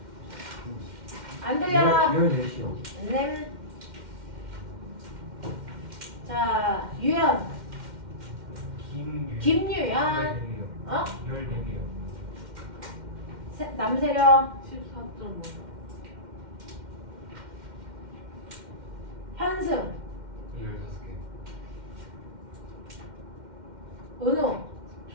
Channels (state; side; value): late; left; 2.1 ms